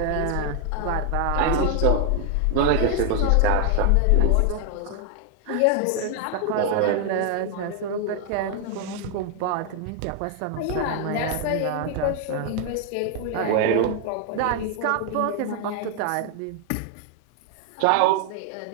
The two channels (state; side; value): different; both; correlation 0.00